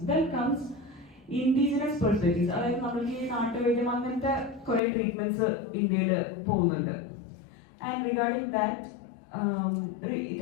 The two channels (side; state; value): right; drops out; at 4.8 s